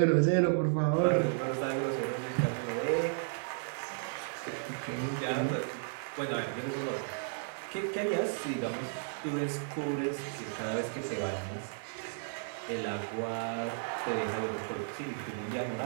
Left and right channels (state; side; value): silent; left; 55 dB below the other